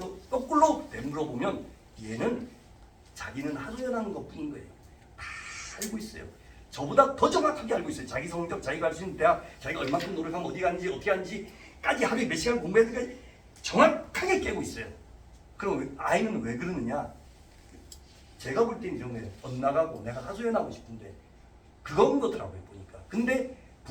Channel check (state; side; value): identical; both; correlation 1.00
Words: 거꾸로 되물어보면 얘는 자기는 하소연하는 것뿐인 거예요. 다 알고 있어요. 저보다 더 정확하게 알고 있어요. 자기 성적, 자기가 할 수 있는 대학, 자기가 얼마큼 노력하면 어디 갔는지 어떻게 하는지까지 하루에 몇 시간 공부해야 될까지 정확하게 깨고 있어요. 그럼 아이는 왜 그러느냐? 제가 볼 때는 이런 거예요. 엇나가고 내가 하소연하고 싶은데 그건 거더라고요 보니까. 근데